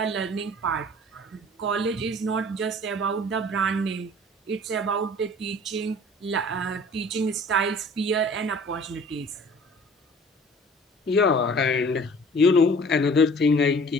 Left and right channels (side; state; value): both; normal; correlation 0.48